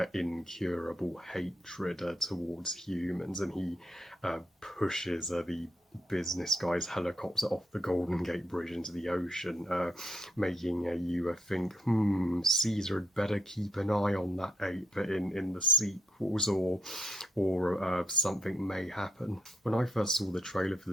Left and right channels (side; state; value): both; normal; correlation 0.75